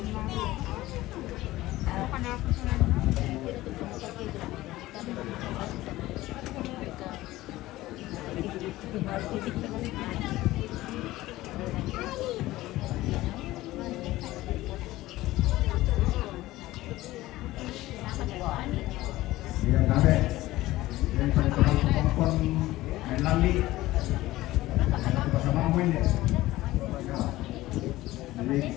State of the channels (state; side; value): quieter; right; 17.2 dB